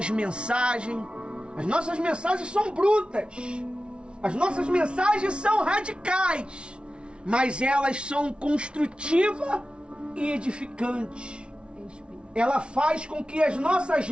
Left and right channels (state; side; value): late; left; 0.057 ms